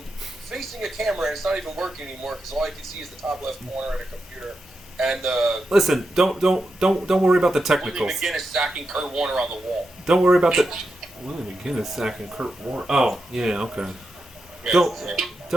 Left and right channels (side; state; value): both; normal; correlation 0.87